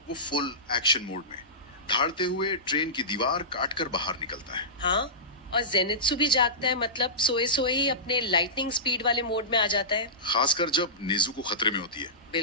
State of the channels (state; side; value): normal; both; correlation -0.19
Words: वो फुल एक्शन मोड में धाड़ते हुए ट्रेन की दीवार काटकर बाहर निकलता है। हाँ, और जेनित्सु भी जागता है, मतलब सोए सोए ही अपने लाइटनिंग स्पीड वाले मोड में आ जाता है। खासकर जब नेजुको खतरे में होती है।